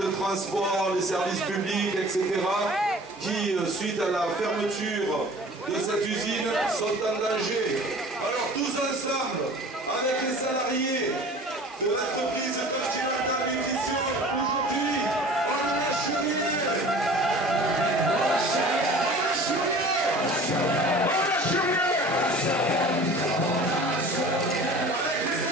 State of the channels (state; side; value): normal; both; correlation 0.44